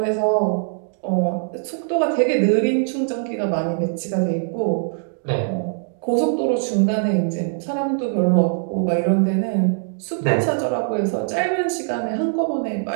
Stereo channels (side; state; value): left; silent; digital silence